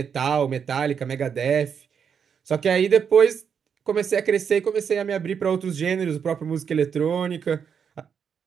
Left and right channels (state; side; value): quieter; left; 7.1 dB